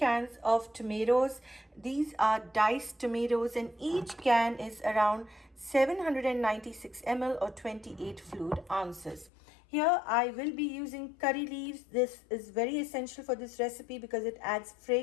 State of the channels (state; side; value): drops out; right; at 9.3 s